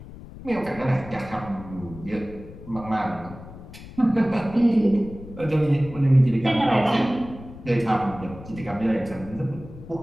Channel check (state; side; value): noise; left; rumble, 15 dB below the sound